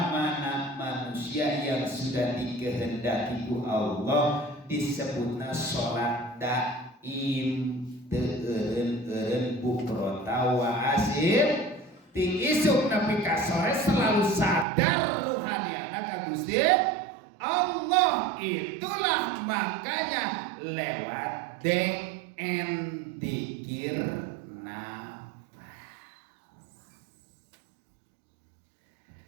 mana manusia yang sudah dikehendaki ku Allah disebutna sholat daim. Eureun bukrota wa asil ti isuk nepi ka sore selalu sadar ruhaniyana ka Gusti Allah. Itulah makanya lewat DN dzikir nafas.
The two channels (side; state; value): left; drops out; at 14.7 s